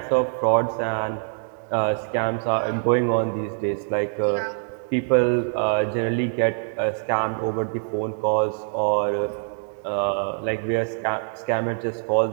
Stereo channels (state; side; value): silent; left; digital silence